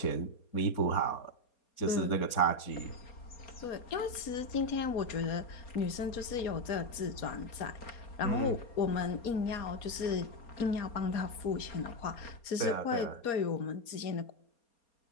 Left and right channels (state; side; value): late; right; 4.3 ms